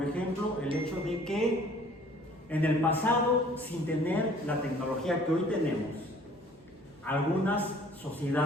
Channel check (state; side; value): normal; both; correlation 0.54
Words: ejemplo, el hecho de que en el pasado, sin tener la tecnología que hoy tenemos, algunas